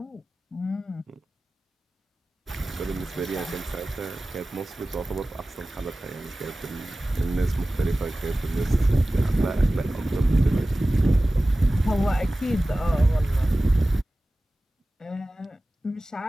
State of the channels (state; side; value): normal; both; correlation 0.97